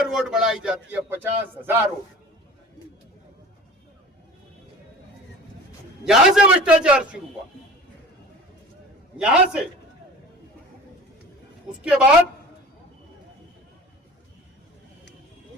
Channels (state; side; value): normal; both; correlation 0.41